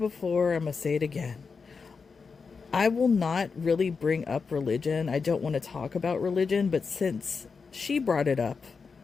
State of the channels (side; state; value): right; quieter; 5.1 dB